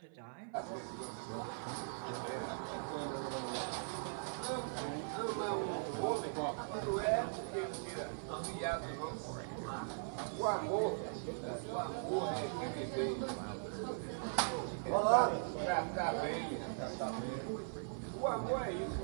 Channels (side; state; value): left; silent; 51 dB below the other